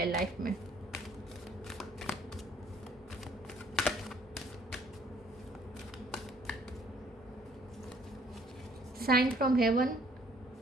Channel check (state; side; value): normal; both; correlation 0.61